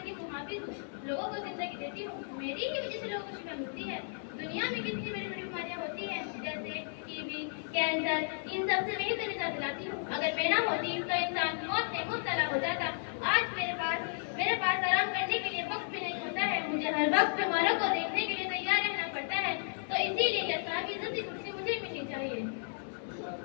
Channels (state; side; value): silent; right; 55 dB below the other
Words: को हाफिज हूँ, लोगों को जिंदगी देती हूँ। मेरी ही वजह से लोगों को शिफा मिलती है। दुनिया में कितनी बड़ी बड़ी बीमारियाँ होती हैं, जैसे टीबी, कैंसर, इन सब से मैं ही तो निजात दिलाती हूँ। अगर मैं ना होती तो इंसान मौत में मुब्तला हो जाता। आज मेरे पास आराम करने के लिए वक्त भी नहीं होता है। मुझे हर वक्त बीमारों को देखने के लिए तैयार रहना पड़ता है। तो इसीलिए यह साहब इज्जत की कुर्सी मुझे मिलनी चाहिए।